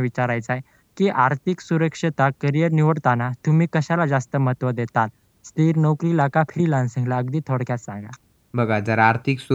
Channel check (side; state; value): both; identical; correlation 1.00